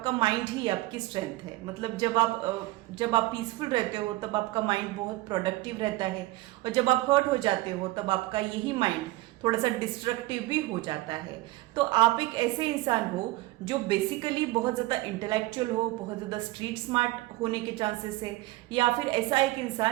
माइंड ही आपकी स्ट्रेंथ है। मतलब जब आप पीसफुल रहते हो तब आपका माइंड बहुत प्रोडक्टिव रहता है, और जब आप हर्ट हो जाते हो तब आपका यही माइंड थोड़ा सा डिस्ट्रक्टिव भी हो जाता है। तो आप एक ऐसे इंसान हो जो बेसिकली बहुत ज़्यादा इंटेलेक्चुअल हो, बहुत ज़्यादा स्ट्रीट स्मार्ट होने के चांसेस है, या फिर ऐसा एक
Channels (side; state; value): left; quieter; 19.0 dB